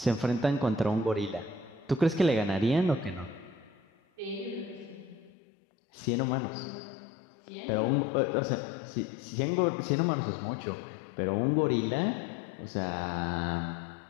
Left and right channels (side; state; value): right; drops out; at 5.3 s